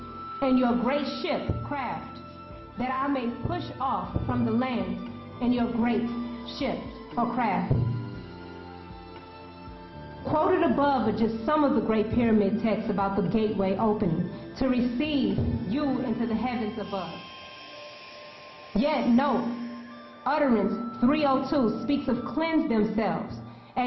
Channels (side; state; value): both; identical; correlation 1.00